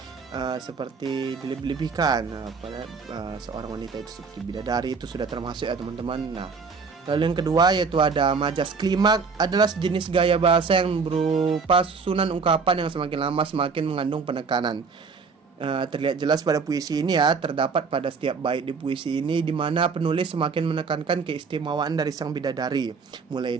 seperti dilebih-lebihkan. Pada seorang wanita itu seperti bidadari itu sudah termasuk ya teman-teman. Nah, lalu yang kedua yaitu ada majas klimak, adalah sejenis gaya bahasa yang berupa susunan ungkapan yang semakin lama semakin mengandung penekanan. Terlihat jelas pada puisi ini ya, terdapat pada setiap bait di puisi ini di mana penulis semakin menekankan keistimewaan dari sang bidadari, mulai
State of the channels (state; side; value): quieter; left; 5.1 dB